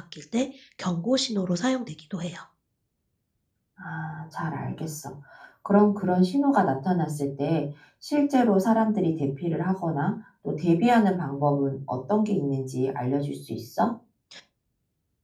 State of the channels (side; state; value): both; identical; correlation 1.00